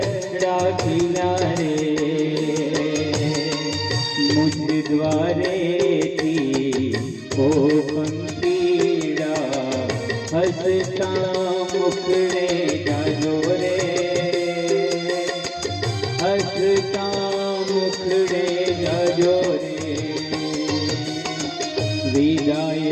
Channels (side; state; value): both; identical; correlation 1.00